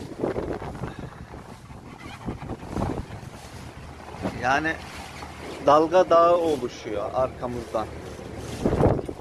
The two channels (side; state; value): both; identical; correlation 1.00